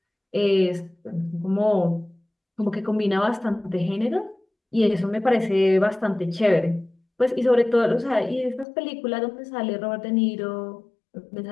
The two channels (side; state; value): right; drops out; at 8.7 s